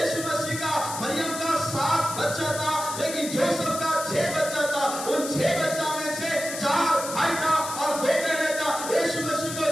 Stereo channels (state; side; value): noise; left; hiss, 8 dB below the sound